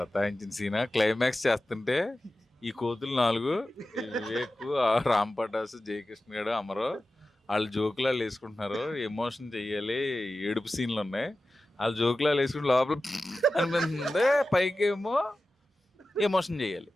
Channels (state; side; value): normal; both; correlation 0.94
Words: సీనా? క్లైమాక్స్ చేస్తుంటే ఈ కోతులు 4, వివేక్, రామ్ పటాసు, జయకృష్ణ గారు, అమరో వాళ్ళు జోకులాలు వేసుకుంటున్నారు. ఎమోషన్ చెయ్యాలి, ఏడుపు సీన్లు ఉన్నాయి. వాళ్ళు జోకులాలు వేసుకుంటే లోపల అనిపిస్తుంది, పైకేమో ఎమోషన్ చెయ్యాలి.